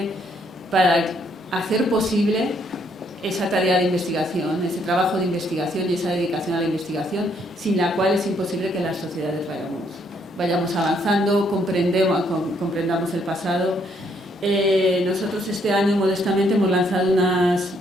para hacer posible esa tarea de investigación, ese trabajo de investigación y esa dedicación a la investigación, sin la cual es imposible que las sociedades vayamos avanzando, comprendamos el pasado. Nosotros este año, modestamente, hemos lanzado unas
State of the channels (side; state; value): both; normal; correlation 0.70